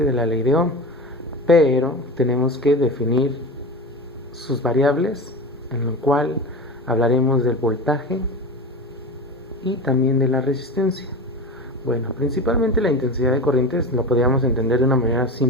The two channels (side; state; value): both; normal; correlation 0.27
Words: de la ley de Ohm, pero tenemos que definir sus variables, en lo cual hablaremos del voltaje y también de la resistencia. Bueno, principalmente la intensidad de corrientes lo podríamos entender de una manera